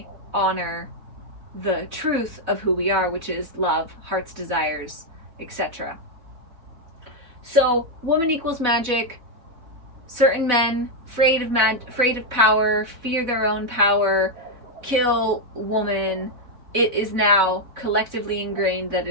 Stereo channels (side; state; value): left; late; 4.1 ms